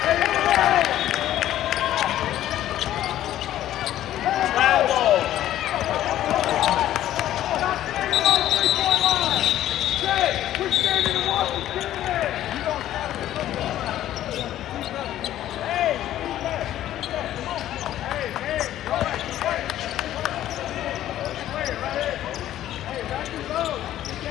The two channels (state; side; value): quieter; right; 12.8 dB